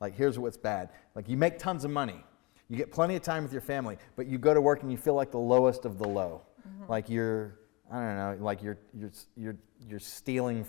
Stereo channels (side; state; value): right; quieter; 27.1 dB